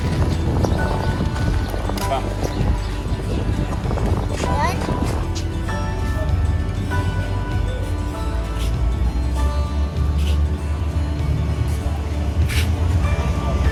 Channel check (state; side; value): identical; both; correlation 1.00